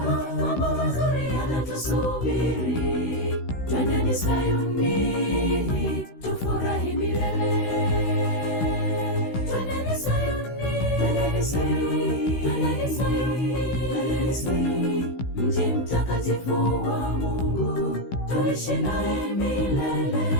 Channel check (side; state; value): right; late; 16 ms